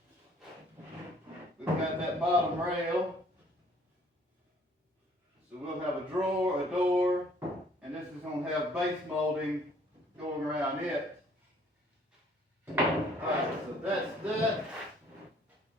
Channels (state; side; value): normal; both; correlation 0.60